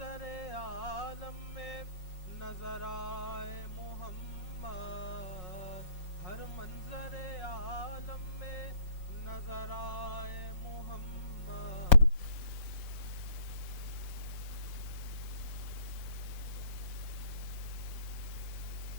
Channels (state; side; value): late; right; 5.5 ms